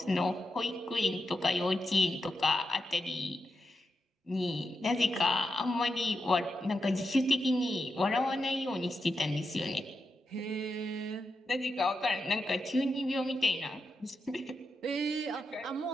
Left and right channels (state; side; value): normal; both; correlation 0.86